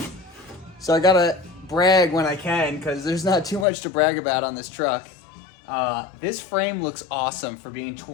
So I gotta brag when I can, because there's not too much to brag about on this truck. This frame looks awesome for being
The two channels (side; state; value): right; drops out; at 3.7 s